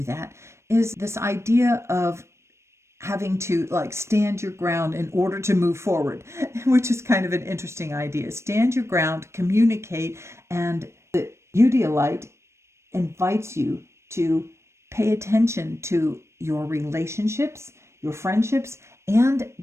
that is this idea of having to stand your ground in order to move forward, which is kind of an interesting idea. Stand your ground, communicate, and the Eudialyte invites you to pay attention to your relationships, your friendships, and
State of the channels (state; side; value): late; left; 0.13 ms